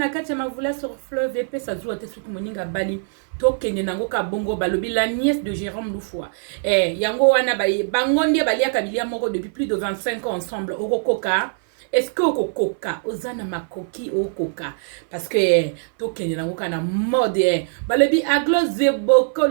katia mavula sur fleuve épais ça joue à te souk moninga bali. Tokende nango ka bongo balobi la nièce de Jérôme Loufoua. Yango wana bangondi balia kabilia moko depuis plus de 25 ans ensemble. Okokoka. Est-ce que okokoka ozana makoki okoka parce que tokende nango kana mode balobi Aglo Zeboko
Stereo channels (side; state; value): left; silent; 58 dB below the other